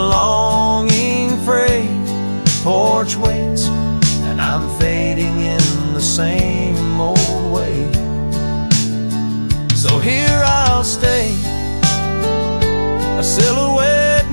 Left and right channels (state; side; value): inverted; both; correlation -1.00